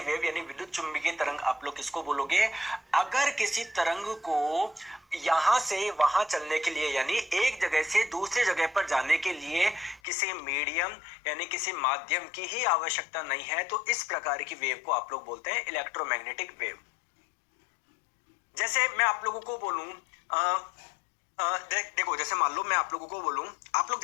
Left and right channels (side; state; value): right; drops out; at 10.0 s